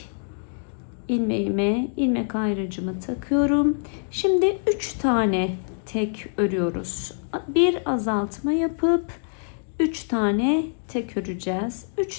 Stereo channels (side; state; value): right; silent; digital silence